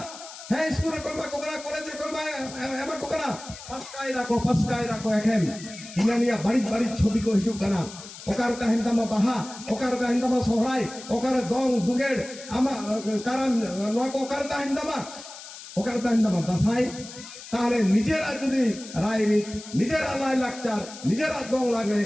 হ্যাঁ স্কুলের কর্মা কোকরা কলেজের কর্মা এমা কোকরা পাঁচটায় রাখো এখন ইনানিয়া বাড়ি বাড়ি ছবি কো হিসুক কানা ওকার কাহিনতামা বাহা ওকার কাহিনতামা সহরাই ওকার দং দুগেড় আমা কারণ নোয়া কো ওকার কাহিনতামা দাসাই তাহলে নিজেরা যদি রায়রিত নিজেরা লাই লাকচার নিজেরা দং লাগলে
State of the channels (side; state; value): left; noise; hiss, 14 dB below the sound